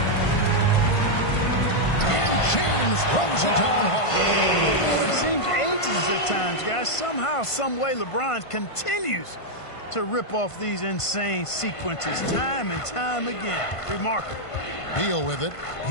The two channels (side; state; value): right; late; 1.5 ms